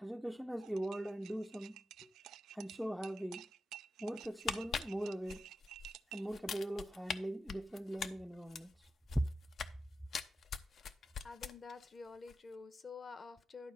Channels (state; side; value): normal; both; correlation 0.90